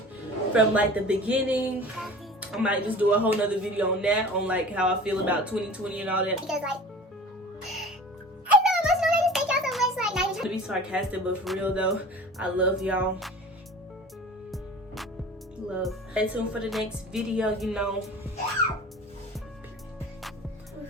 from, like, the beginning. I might just do a whole nother video on that, on like how I feel about 2020 and all that. Because like, I'm so emotional. I just thank y'all so much. Like, not even to be sarcastic, but for real though, I love y'all. Love. Stay tuned for the next video, you know.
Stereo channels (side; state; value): both; normal; correlation 0.40